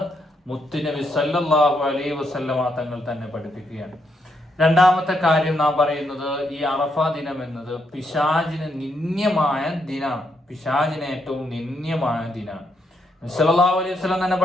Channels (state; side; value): normal; both; correlation 0.78